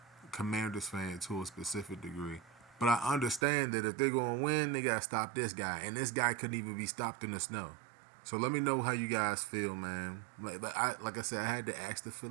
Commanders fan to a specific degree. But I understand that if they're going to win, they got to stop this guy. And this guy couldn't even be stopped in the snow. So let me know how you guys feel, man. Like I said, I had to ask the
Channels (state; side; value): drops out; left; at 3.5 s